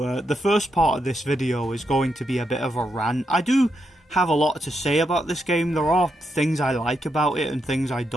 the first part of this video is going to be a bit of a rant. I do have a lot to say about this game. There are things I like about it and things I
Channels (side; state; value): both; normal; correlation 0.82